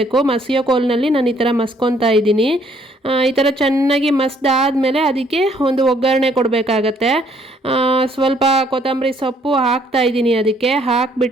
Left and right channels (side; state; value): both; normal; correlation 0.65